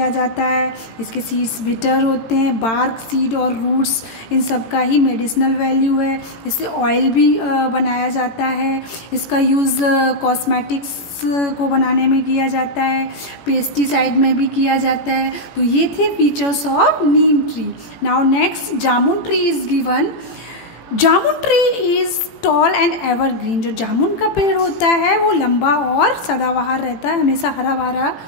जाता है, इसके सीड्स बिटर होते हैं, बार्क, सीड और रूट्स इन सब का ही मेडिसिनल वैल्यू है। इससे ऑयल भी बनाया जाता है। इसका यूज़ कॉस्मेटिक्स को बनाने में किया जाता है, पेस्टिसाइड में भी किया जाता है। तो ये थे features of Neem tree. Now next, jamun tree is given. Jamun tree is tall and evergreen. जो जामुन का पेड़ होता है वो लंबा और सदाबहार रहता है, हमेशा हरा भरा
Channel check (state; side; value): late; right; 18 ms